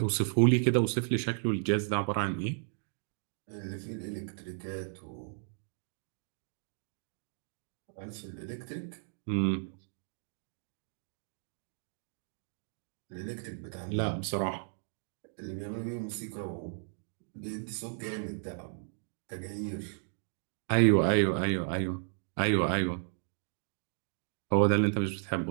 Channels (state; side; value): silent; left; digital silence